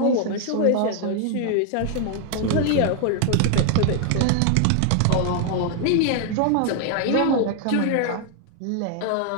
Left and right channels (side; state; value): both; different; correlation 0.00